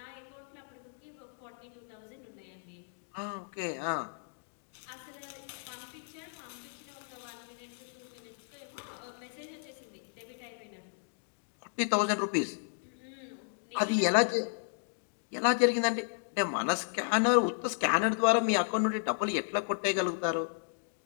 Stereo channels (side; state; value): right; silent; digital silence